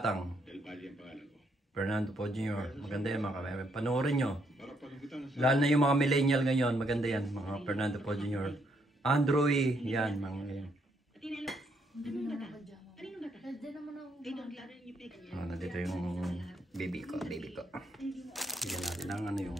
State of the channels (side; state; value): both; normal; correlation 0.74